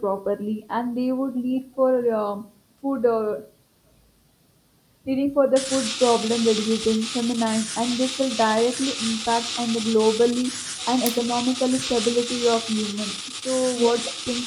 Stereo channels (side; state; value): both; identical; correlation 1.00